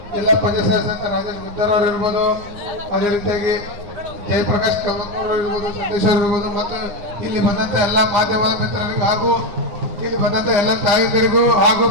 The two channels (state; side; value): late; left; 9.7 ms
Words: ಜಿಲ್ಲಾ ಪಂಚಾಯತ್ ಸದಸ್ಯ ರಾಜೇಶ್ ಗುದ್ದರ್ ಅವರು ಇರ್ಬೋದು, ಅದೇ ರೀತಿಯಾಗಿ ಜಯಪ್ರಕಾಶ್ ಕಮಕೂರ್ ಇರ್ಬೋದು, ಸಂದೇಶ್ ಅವರು ಇರ್ಬೋದು, ಮತ್ತು ಇಲ್ಲಿ ಬಂದಂತ ಎಲ್ಲ ಮಾಧ್ಯಮದ ಮಿತ್ರರಿಗೂ ಹಾಗೂ ಇಲ್ಲಿ ಬಂದಂತ ಎಲ್ಲ ತಾಯಂದಿರಿಗೂ ಹಾಗೂ